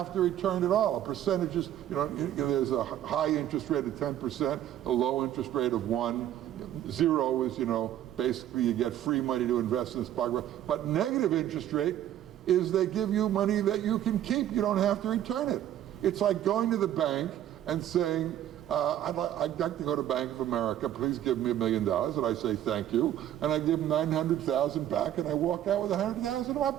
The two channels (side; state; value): left; quieter; 11.7 dB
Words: to return at all. Percentages, there's a high interest rate of 10%, a low interest rate of 1%. Zero is, basically you get free money to invest in the stock market. But negative interest rate is they give you money that you can keep. You don't have to return it. It's like going to the bank and saying, I'd like to go to Bank of America, please give me $1 million, and I say thank you, and I give them 900,000 back, and I walk out with 100,000 in my